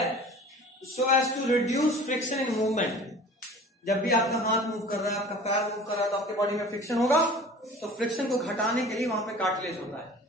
so as to reduce friction in movement. जब भी आपका हाथ मूव कर रहा है, आपका पैर मूव कर रहा है तो आपके बॉडी में फ्रिक्शन होगा, तो फ्रिक्शन को घटाने के लिए वहां पे कार्टिलेज होता है।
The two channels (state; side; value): normal; both; correlation 0.43